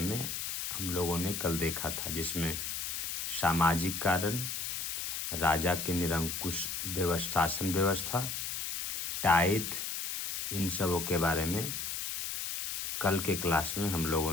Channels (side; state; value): left; noise; hiss, 3 dB below the sound